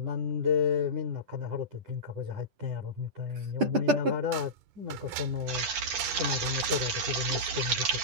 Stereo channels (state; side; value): late; left; 10 ms